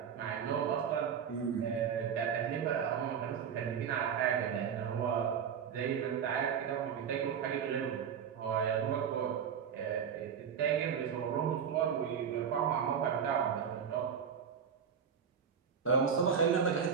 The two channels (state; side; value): quieter; left; 7.4 dB